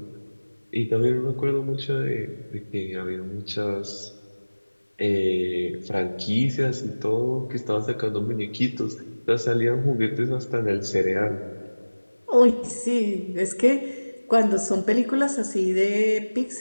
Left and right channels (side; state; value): both; inverted; correlation -1.00